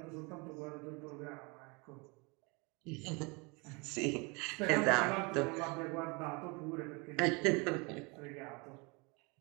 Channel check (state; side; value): quieter; left; 28.8 dB